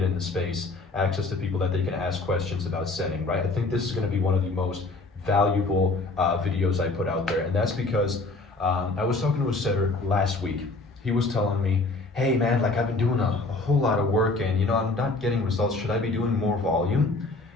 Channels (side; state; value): right; quieter; 3.4 dB